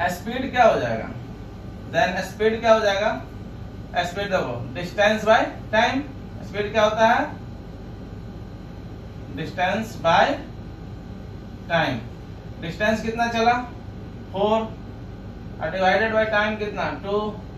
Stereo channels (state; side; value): identical; both; correlation 1.00